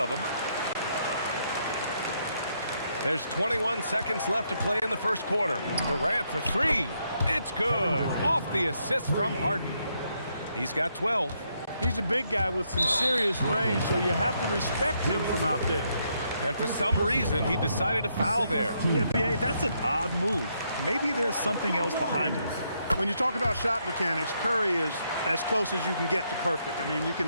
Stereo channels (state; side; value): inverted; both; correlation -0.76